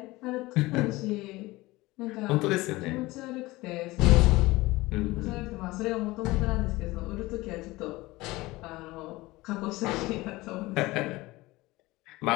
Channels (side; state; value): right; quieter; 20.2 dB